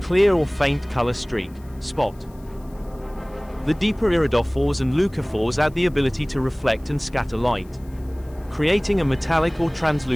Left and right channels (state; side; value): noise; left; hiss, 29 dB below the sound